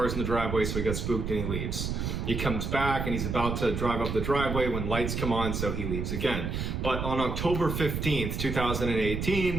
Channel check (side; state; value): right; noise; rumble, 3 dB below the sound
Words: in the driveway, so he got spooked and he leaves. He comes back and he's about to drive up the driveway when lights come on, so he leaves again. But on October 15th,